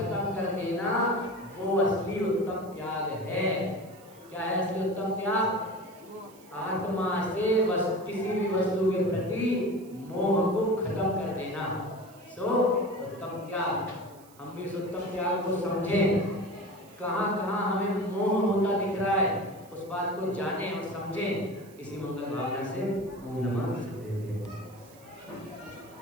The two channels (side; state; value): right; noise; hiss, 25 dB below the sound